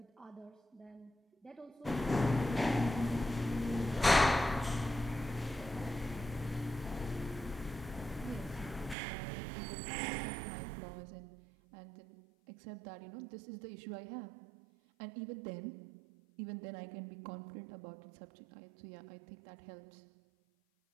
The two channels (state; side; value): drops out; left; at 9.0 s